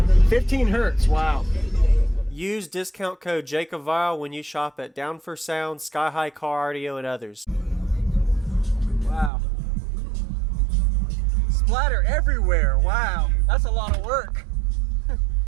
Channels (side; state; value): left; drops out; at 9.3 s